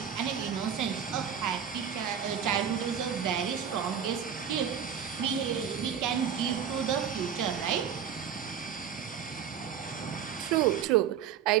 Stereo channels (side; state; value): left; quieter; 8.2 dB